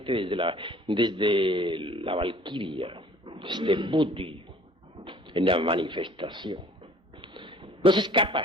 desde la Valquiria, desde Buddhi, en la manifestación. No se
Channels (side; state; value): both; normal; correlation 0.52